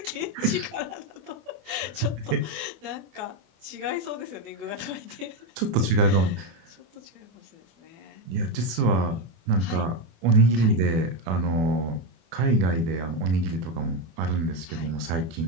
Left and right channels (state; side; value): late; left; 24 ms